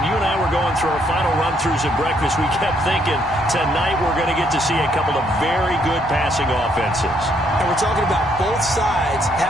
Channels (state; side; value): normal; both; correlation 0.71